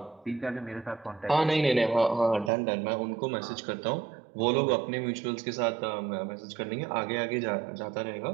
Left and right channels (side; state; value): left; drops out; at 2.5 s